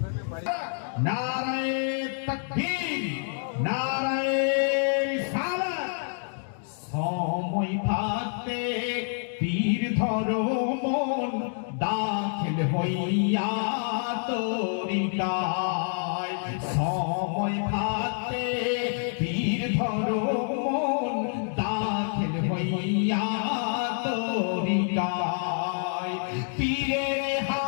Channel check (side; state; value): right; silent; 60 dB below the other